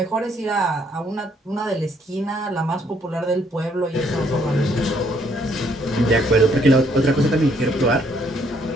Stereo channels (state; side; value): normal; both; correlation 0.68